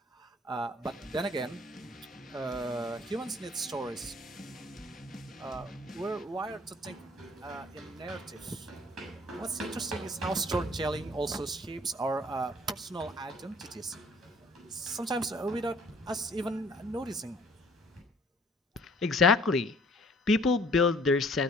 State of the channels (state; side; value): normal; both; correlation 0.56